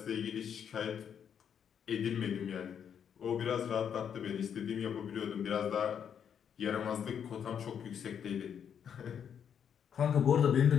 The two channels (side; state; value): right; quieter; 8.1 dB